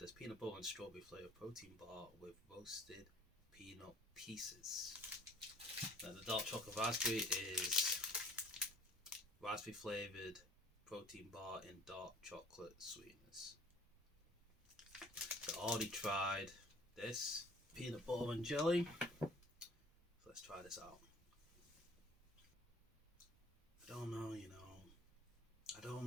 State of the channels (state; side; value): normal; both; correlation 0.51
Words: as peanut butter and strawberry flavoured protein bar with roasted peanut pieces. Now the dark chocolate raspberry is raspberry flavoured protein bar in dark chocolate sweetness. So I already tried this peanut butter and jelly. So let's try this out. I don't know, I don't